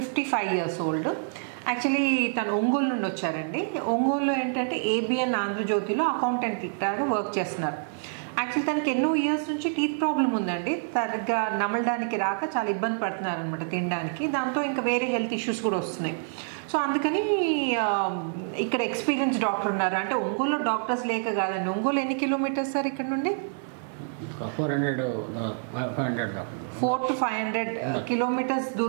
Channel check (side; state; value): left; silent; 60 dB below the other